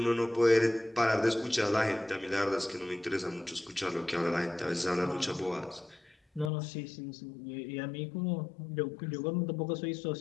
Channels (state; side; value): drops out; right; at 6.5 s